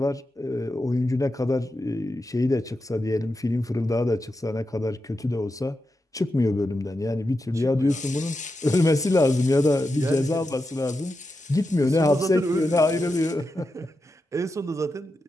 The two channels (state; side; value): normal; both; correlation 0.88